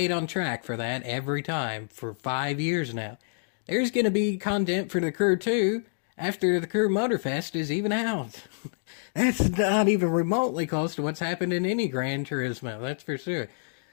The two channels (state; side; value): silent; right; digital silence